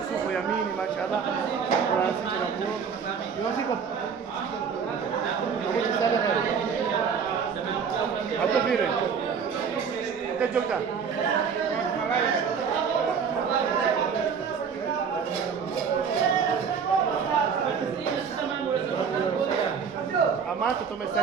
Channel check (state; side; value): quieter; left; 6.5 dB